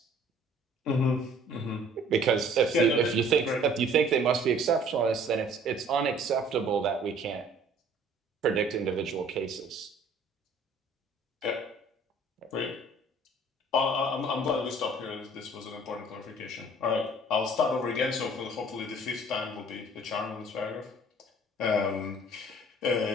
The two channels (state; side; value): normal; both; correlation 0.54